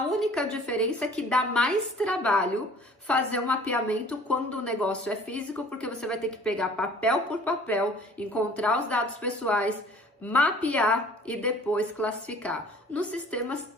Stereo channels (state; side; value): normal; both; correlation 0.51